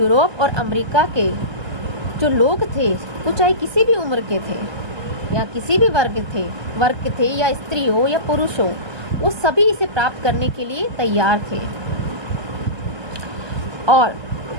और अमेरिका के जो लोग थे, वो चाहे किसी भी उम्र के थे या किसी भी वर्ग थे या स्त्री हो या पुरुष हो, वो सभी इसे प्राप्त करने के लिए तैयार थे। और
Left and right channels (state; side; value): late; left; 1.2 ms